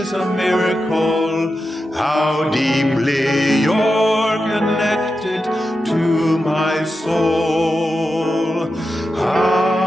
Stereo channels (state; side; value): normal; both; correlation 0.90